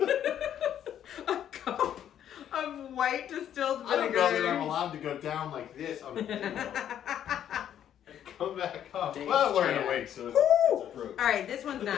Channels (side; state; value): right; quieter; 10.2 dB